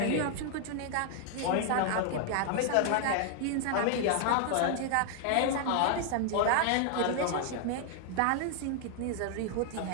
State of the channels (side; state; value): both; different; correlation 0.00